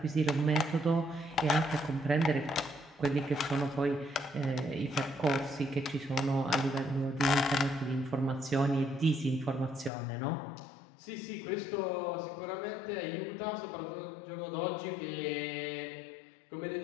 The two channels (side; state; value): right; drops out; at 9.9 s